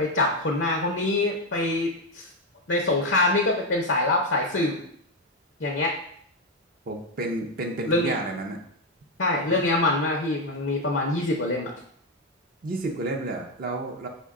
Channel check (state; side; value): normal; both; correlation 0.07